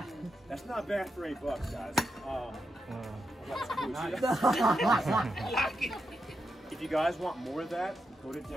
That's not bad for $8, guys. If you guys want more of that, go to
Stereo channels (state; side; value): normal; both; correlation 0.85